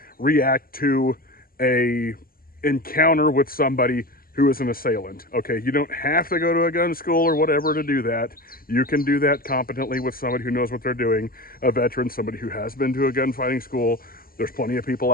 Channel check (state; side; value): late; right; 0.42 ms